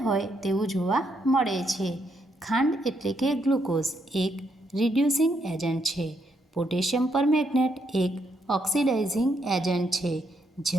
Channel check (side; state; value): both; normal; correlation 0.76